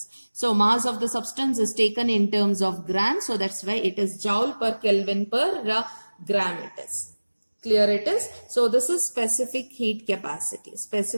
so mass of the substance is taken in terms of grams, so that's why it is joule per Kelvin per gram it is. Clear it is? So this is specific heat capacity.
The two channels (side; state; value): both; inverted; correlation -1.00